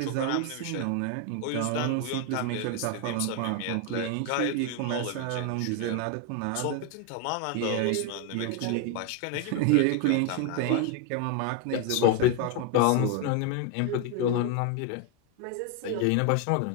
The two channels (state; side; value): different; both; correlation 0.01